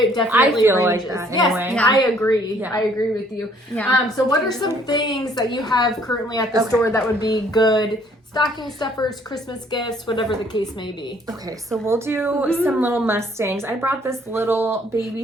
definitely I feel like ranges. that Yes, anyway. Yeah. I agree. Yeah. I agree with you. Yeah. So what are some things that you have currently at the Okay. store that would be good stocking stuffers, Christmas gifts, whatever the case may be? Okay, so we'll do some little Mustangs. I brought this little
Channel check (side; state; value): both; normal; correlation 0.62